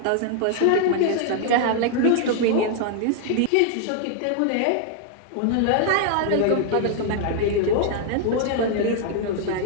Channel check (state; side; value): different; both; correlation 0.00